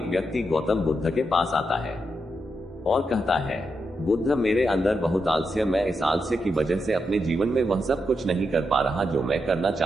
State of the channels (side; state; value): both; normal; correlation 0.84